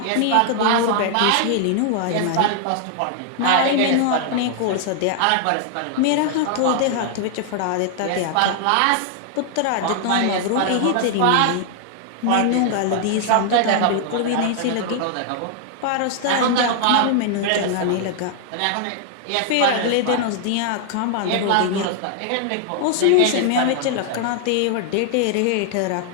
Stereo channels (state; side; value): different; both; correlation 0.00